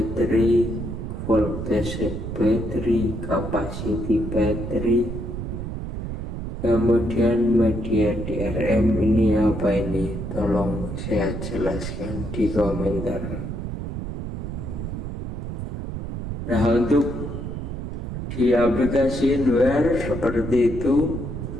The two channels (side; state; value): right; noise; rumble, 6 dB below the sound